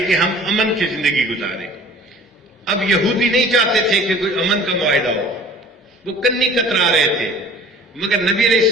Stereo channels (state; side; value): normal; both; correlation 0.47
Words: کہ ہم امن کی زندگی گزاریں۔ اب یہودی نہیں چاہتے تھے کہ کوئی امن کا معاہدہ ہو، وہ کنی کترا رہے تھے، مگر نبی علیہ